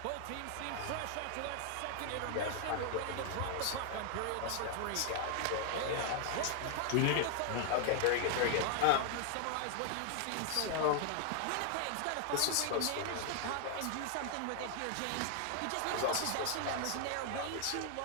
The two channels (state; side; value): different; both; correlation 0.00